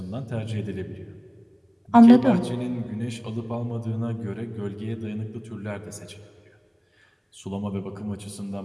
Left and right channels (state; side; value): identical; both; correlation 1.00